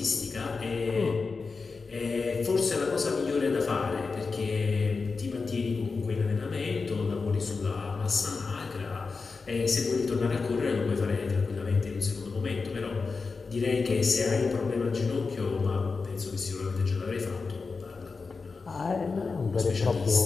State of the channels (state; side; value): quieter; right; 4.5 dB